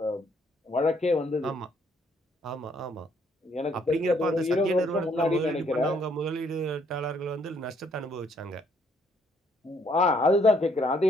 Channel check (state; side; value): normal; both; correlation 0.68